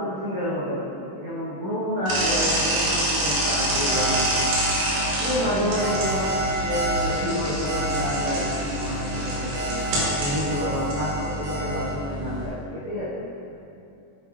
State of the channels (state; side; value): late; left; 21 ms